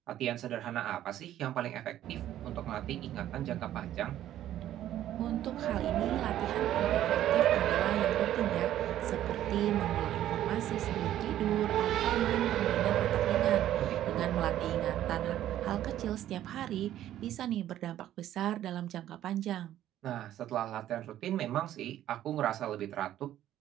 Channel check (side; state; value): left; quieter; 12.4 dB